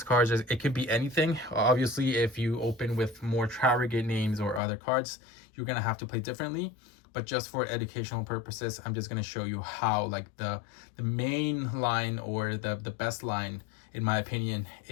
cards, it could be anything. Obviously, if you open with more Tri-Brigade names or other cards, you're gonna have to play differently. But just for educational purposes, I'm just gonna show you how like the main line or the best line, in my opinion,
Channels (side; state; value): right; drops out; at 4.6 s